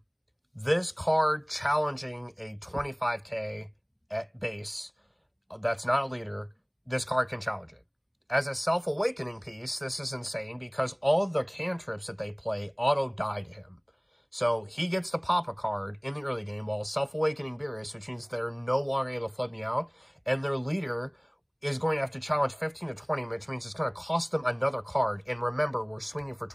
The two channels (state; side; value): identical; both; correlation 1.00